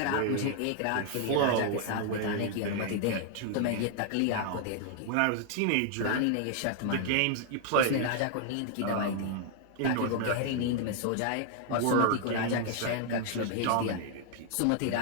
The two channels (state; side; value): different; both; correlation 0.00